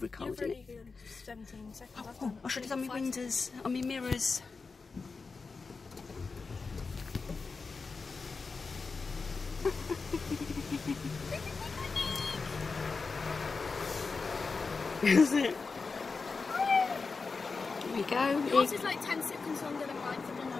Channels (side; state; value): right; quieter; 4.5 dB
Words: it? You've already 17 seconds. Oh, I should have done my windows, on my mirrors. Is it? Here we go. Yours is like 10 seconds longer than mine, so I don't know